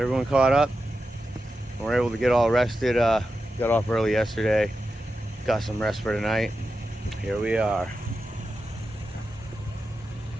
caught up. And we're able to get all rested. Got off early yesterday. Got some rest for tonight. Here we are.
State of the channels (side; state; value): both; normal; correlation 0.90